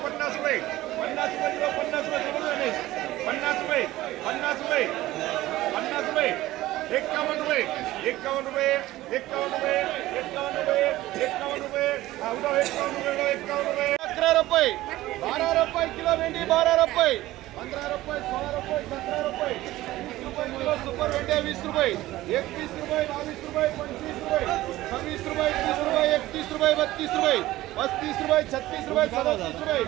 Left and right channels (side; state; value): left; quieter; 16.5 dB